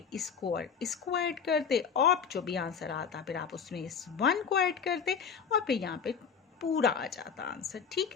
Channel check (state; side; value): quieter; right; 6.6 dB